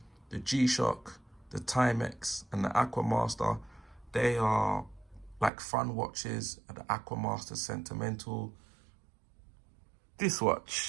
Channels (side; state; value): left; drops out; at 5.5 s